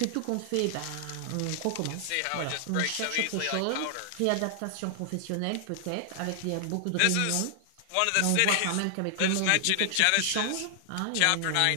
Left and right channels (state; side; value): different; both; correlation 0.00